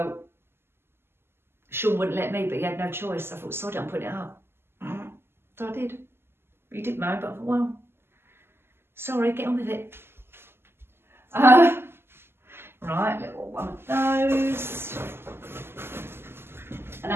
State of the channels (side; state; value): left; late; 0.12 ms